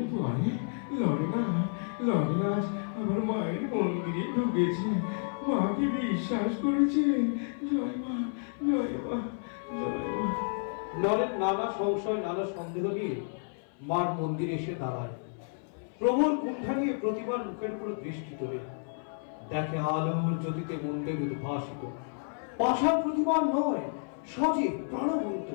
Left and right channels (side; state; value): right; silent; 56 dB below the other